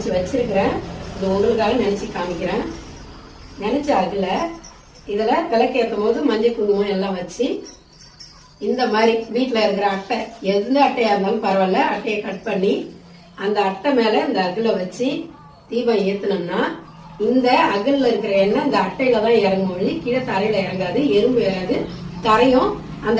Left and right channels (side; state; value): both; identical; correlation 1.00